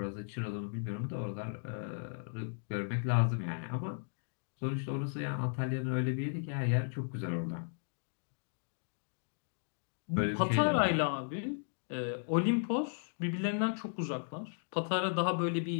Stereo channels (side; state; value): right; silent; digital silence